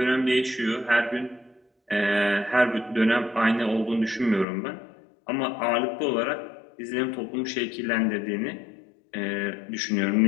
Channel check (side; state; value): right; drops out; at 4.5 s